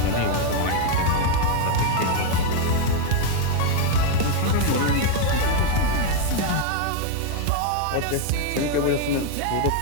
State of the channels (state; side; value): different; both; correlation 0.01